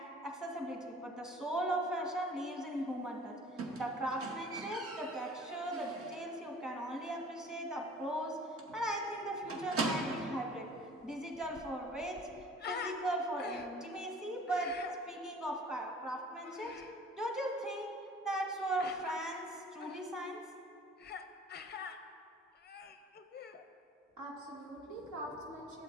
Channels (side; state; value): both; normal; correlation 0.49